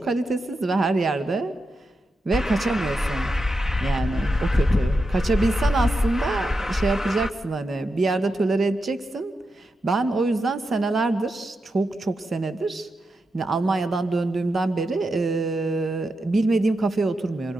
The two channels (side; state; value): both; normal; correlation 0.87